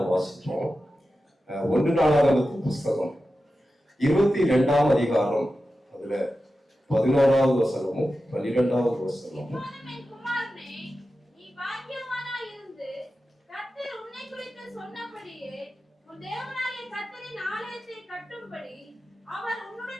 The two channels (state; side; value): normal; both; correlation 0.92